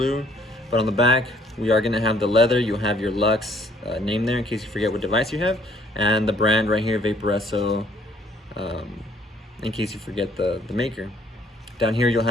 But on the back, we are gonna have the leather. You'll have your Lux name there in case you forget what device you have. And the brand right here, Vaporesso, in case you forget the maker. Down here, you'll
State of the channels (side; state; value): both; normal; correlation 0.62